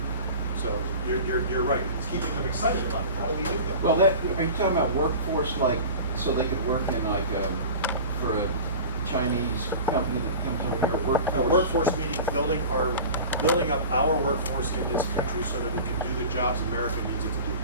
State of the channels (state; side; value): inverted; both; correlation -0.36